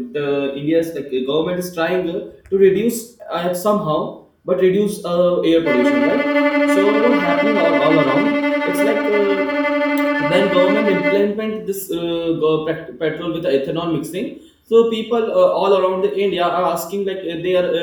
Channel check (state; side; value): identical; both; correlation 1.00